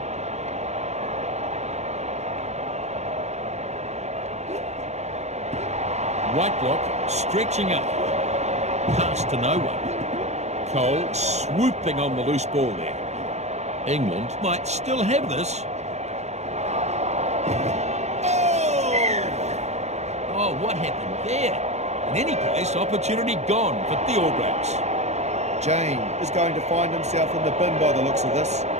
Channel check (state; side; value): late; left; 0.32 ms